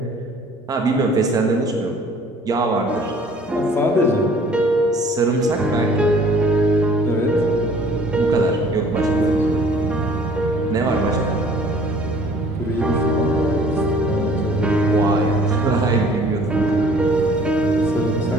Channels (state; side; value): normal; both; correlation 0.53